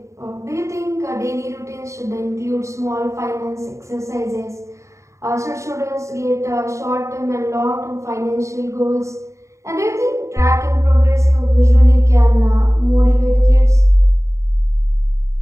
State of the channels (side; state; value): left; late; 0.14 ms